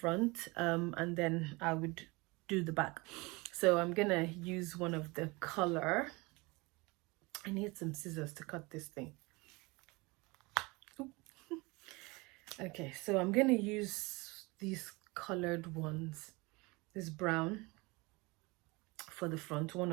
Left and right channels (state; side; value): quieter; left; 25.2 dB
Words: and then I would do the back. So I'm gonna use one of the color. I need some scissors to cut this thing. Okay, so I'm gonna use these colored ones, this brown for the front, one